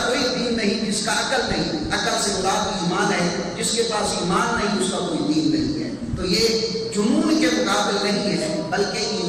کوئی دین نہیں جس کا عقل نہیں۔ عقل سے مراد ایمان ہے، جس کے پاس ایمان نہیں اس کا کوئی دین نہیں ہے۔ تو یہ جنون کے مقابل نہیں ہے بلکہ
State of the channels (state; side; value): identical; both; correlation 1.00